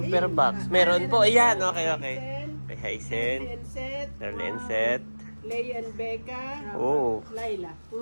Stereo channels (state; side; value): inverted; both; correlation -1.00